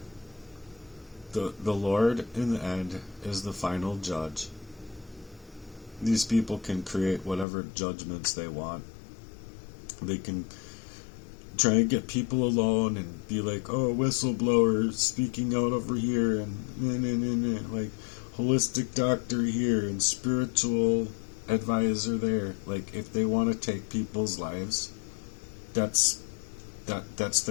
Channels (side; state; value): right; drops out; at 7.5 s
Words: the Lord in the end is the final judge. These people can create whatever judgments they want. They can try and get people alone and be like, oh, whistleblower speaking out over here, and like holistic doctor here and spiritual advisor there. Like, if they want to take people's lives, that's